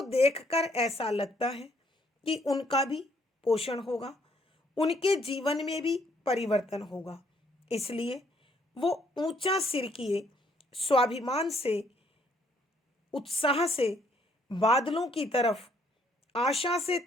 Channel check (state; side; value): normal; both; correlation 0.67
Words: देखकर ऐसा लगता है कि उनका भी पोषण होगा, उनके जीवन में भी परिवर्तन होगा। इसलिए वो ऊंचा सिर किए स्वाभिमान से, उत्साह से बादलों की तरफ आशा से